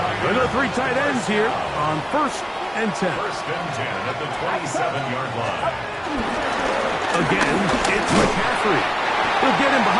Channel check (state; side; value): identical; both; correlation 1.00